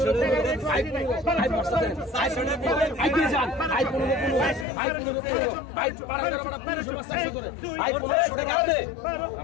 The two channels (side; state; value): right; drops out; at 4.7 s